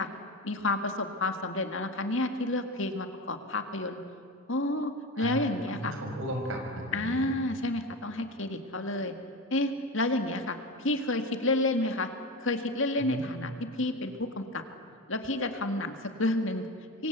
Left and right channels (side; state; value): both; normal; correlation 0.24